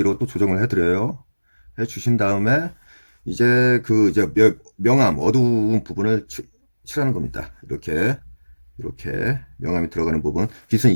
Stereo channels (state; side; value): inverted; both; correlation -1.00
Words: 또 조정을 해드려요. 해주신 다음에 이제 그 이제 명암 어두운 부분을 칠하는 겁니다. 이렇게 명암이 들어가는 부분, 빛은